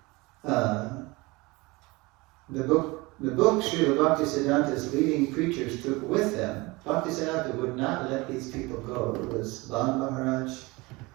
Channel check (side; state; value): left; quieter; 23.6 dB